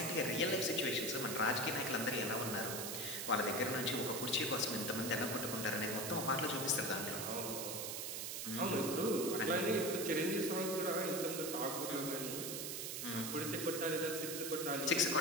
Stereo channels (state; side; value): noise; right; hiss, 4 dB below the sound